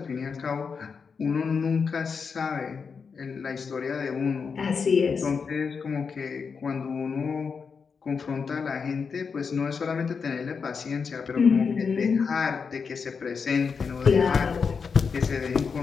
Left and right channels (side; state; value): right; quieter; 5.6 dB